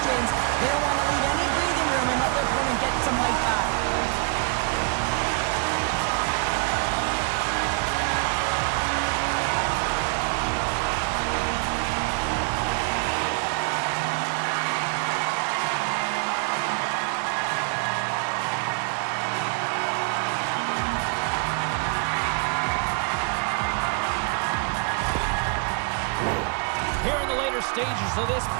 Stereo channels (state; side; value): quieter; left; 37.9 dB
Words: James. They don't want to leave any breathing room and let their opponent get some life back. stages of this